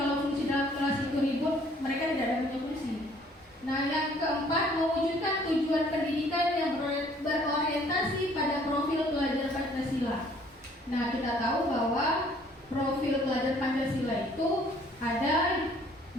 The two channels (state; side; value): normal; both; correlation 0.59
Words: fungsi dalam kelas itu ribut, mereka tidak ada punya fungsi. Nah yang keempat, mewujudkan tujuan pendidikan yang berorientasi pada profil pelajar Pancasila. Nah kita tahu bahwa profil pelajar Pancasila itu ada